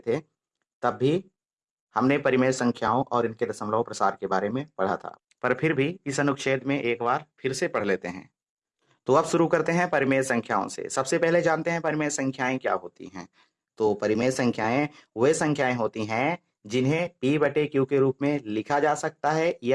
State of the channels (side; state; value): both; identical; correlation 1.00